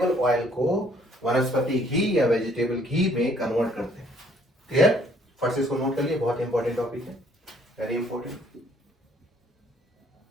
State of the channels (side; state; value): both; normal; correlation 0.62